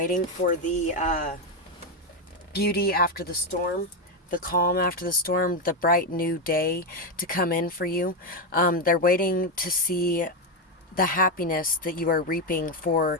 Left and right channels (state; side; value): normal; both; correlation 0.07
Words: for the beauty after the storm, the calm after the storm, the bright new day to come in for you. They're waiting to see the happiness that you are reaping for